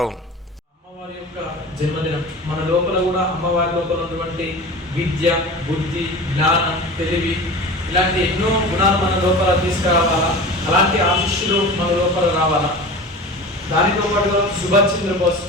అమ్మవారి యొక్క జన్మదినం మన లోపల కూడా అమ్మవారి లోపల ఉన్నటువంటి విద్య, బుద్ధి, జ్ఞానం, తెలివి ఇలాంటి ఎన్నో గుణాలు మన లోపల తీసుకురావాలా, అలాంటి ఆశిష్యులు మన లోపల రావాలా. దానితో పాటుగా సుభాష్ చంద్రబోస్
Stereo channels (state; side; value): normal; both; correlation 0.34